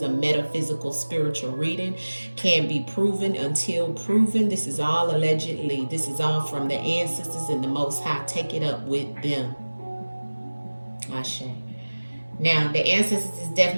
a metaphysical spiritual reading. Can't be proven until proven. This is all allegedly. This is all from the ancestors and the Most High. Take it up with them. Ashe. Now, the ancestors is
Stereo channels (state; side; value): inverted; both; correlation -1.00